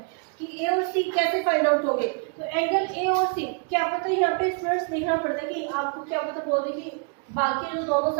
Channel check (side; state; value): left; quieter; 39.0 dB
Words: कि ए और सी कैसे फाइंड आउट होंगे. तो एंगल ए और सी क्या पता है, यहाँ पे स्टूडेंट्स देखना पड़ता है कि आपको क्या पता बोल दे कि बाकी जो दोनों